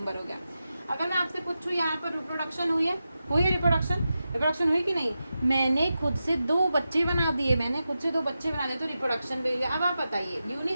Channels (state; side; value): inverted; both; correlation -0.91